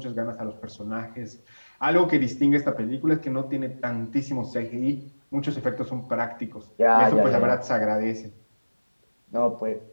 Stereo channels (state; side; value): inverted; both; correlation -1.00